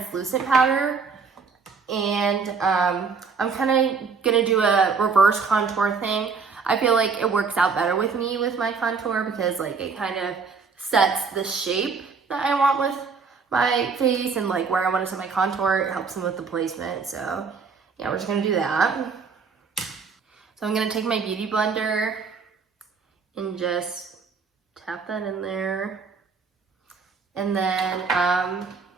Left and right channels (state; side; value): quieter; left; 5.2 dB